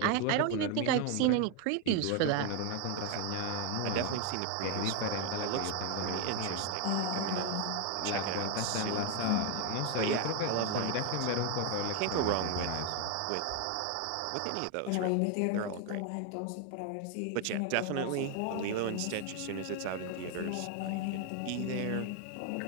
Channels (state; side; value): different; both; correlation 0.01